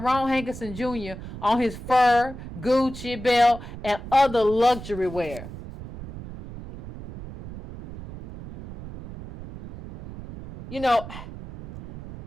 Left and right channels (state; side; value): noise; right; rumble, 12 dB below the sound